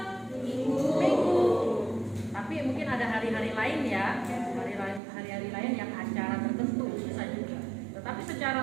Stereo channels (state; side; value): drops out; left; at 5.0 s